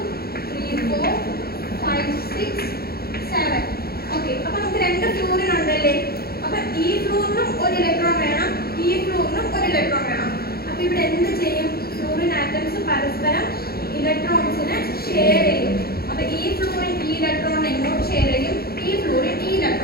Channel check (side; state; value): right; late; 0.45 ms